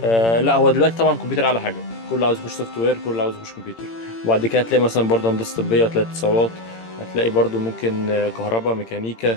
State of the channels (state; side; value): late; right; 18 ms